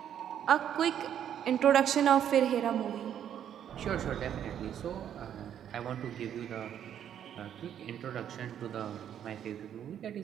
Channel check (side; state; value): left; quieter; 9.6 dB